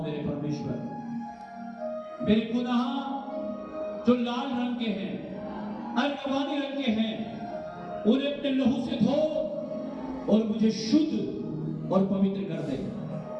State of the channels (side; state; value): both; identical; correlation 1.00